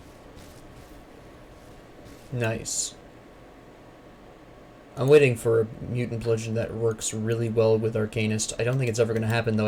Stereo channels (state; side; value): identical; both; correlation 1.00